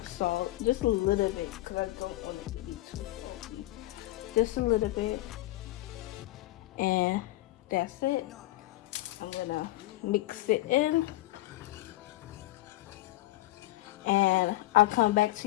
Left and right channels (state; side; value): quieter; right; 17.2 dB